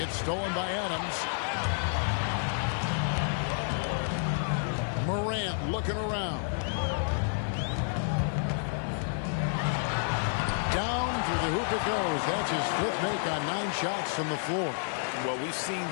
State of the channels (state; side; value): silent; right; 58 dB below the other